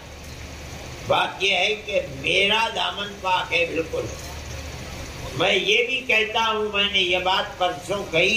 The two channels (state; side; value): identical; both; correlation 1.00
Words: بات یہ ہے کہ میرا دامن پاک ہے بالکل۔ میں یہ بھی کہتا ہوں، میں نے یہ بات پرسوں